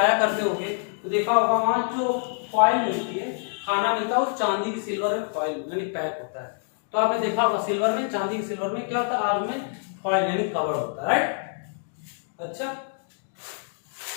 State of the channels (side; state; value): right; silent; 61 dB below the other